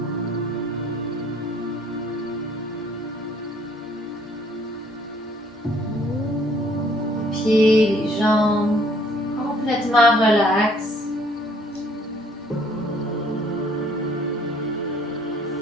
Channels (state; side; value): normal; both; correlation 0.61